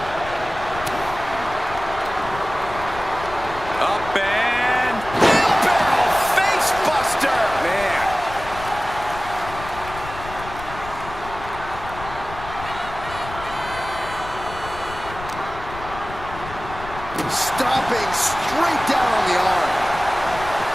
Up and... Wheelbarrow face buster! Man. Stomping straight down on the arm.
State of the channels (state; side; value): noise; left; rumble, 13 dB below the sound